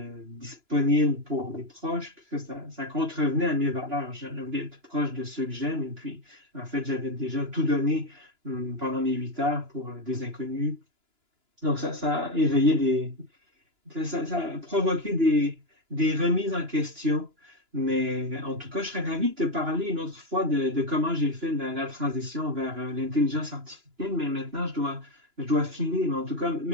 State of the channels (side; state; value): left; late; 2.9 ms